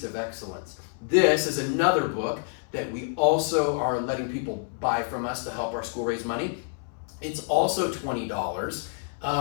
of Excellence. This is another book that we also are letting people buy from us to help our school raise money. It's also $20.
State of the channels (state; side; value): silent; right; 60 dB below the other